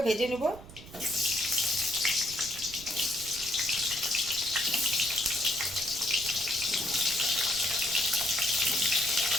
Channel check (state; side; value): noise; right; rumble, 17 dB below the sound